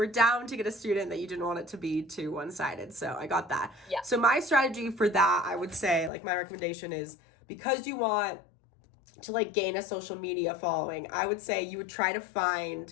down to get a student, that you didn't want it to be too one-sided. So I got that. Yeah. So my strategy for that, I would say, like my recommendation is because you want to like gain a social media following, I would say you would try to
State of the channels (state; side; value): drops out; right; at 6.1 s